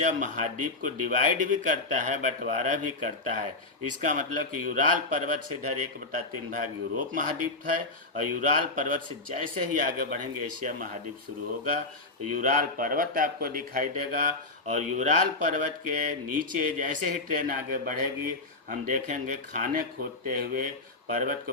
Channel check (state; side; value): quieter; right; 3.1 dB